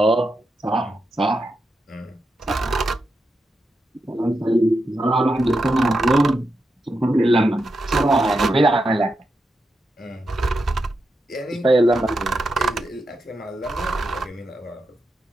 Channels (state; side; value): normal; both; correlation 0.86